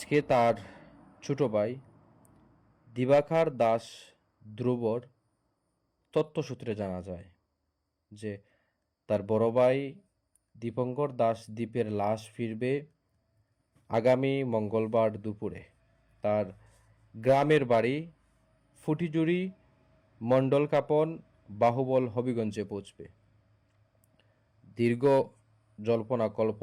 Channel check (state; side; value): identical; both; correlation 1.00